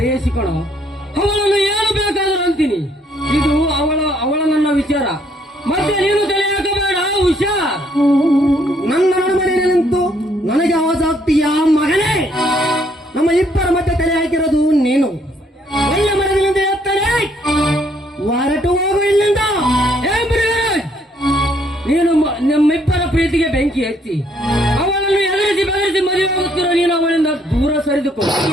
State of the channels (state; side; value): normal; both; correlation 0.67